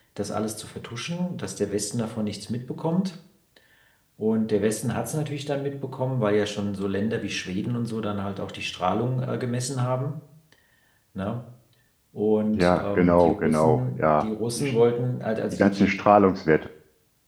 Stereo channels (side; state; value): both; identical; correlation 1.00